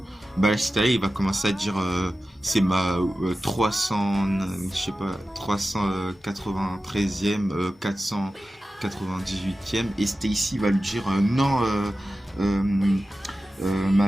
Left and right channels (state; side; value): normal; both; correlation 0.94